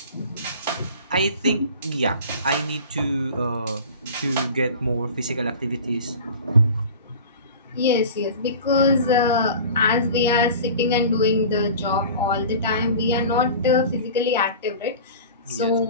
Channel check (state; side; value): inverted; both; correlation -0.38